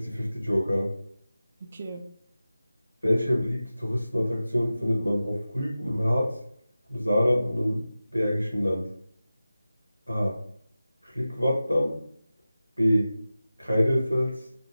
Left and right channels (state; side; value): inverted; both; correlation -0.95